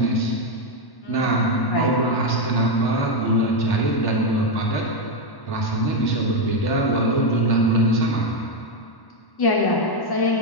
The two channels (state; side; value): late; right; 1.1 ms